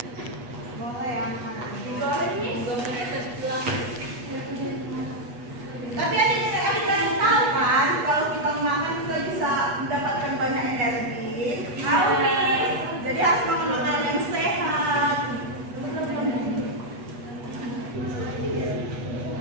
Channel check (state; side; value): late; left; 8.2 ms